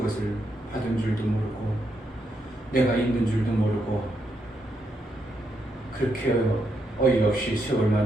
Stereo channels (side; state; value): both; normal; correlation 0.80